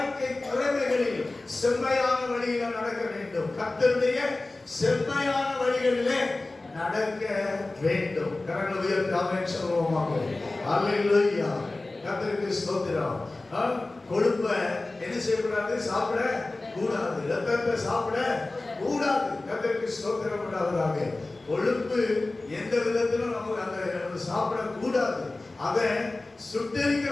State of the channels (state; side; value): quieter; right; 3.0 dB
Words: துறைகளில் செம்மையான வழியில நடக்க வேண்டும். கர்த்தருடைய செம்மையான வழிகளிலே நடக்க வேண்டும். கரங்களை உயர்த்தி ஆமென் சொல்வோமாக. அல்லேலூயா. கர்த்தருக்கு ஸ்தோத்திரம். கொழுப்ப என்ன செய்யக்கூடாது? சாப்பிட கூடாது. ரத்தத்தை சாப்பிட கூடாது. கர்த்தருக்கு ஸ்தோத்திரம் உண்டாவதாக. கொழுப்பு எந்த விதத்திலும் நம்ம அந்த சாப்பிட கூடாது. அதை சுட்டரிக்க